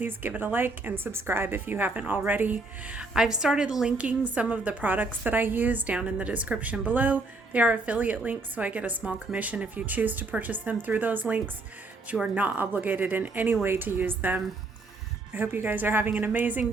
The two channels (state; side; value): quieter; left; 3.3 dB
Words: give it a like and subscribe if you haven't already. I've started linking some of the products that I use down in the description below. They are affiliate links, so I get a small commission if you choose to purchase them through those links, but you are not obligated in any way to use them. I hope you guys are having an amazing